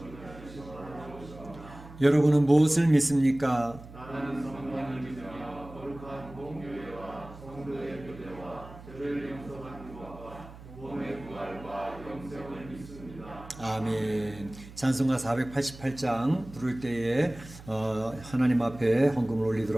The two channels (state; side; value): noise; right; hum, 17 dB below the sound